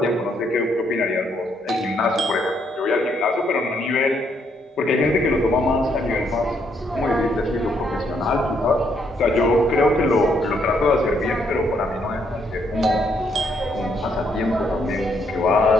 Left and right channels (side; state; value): both; normal; correlation 0.72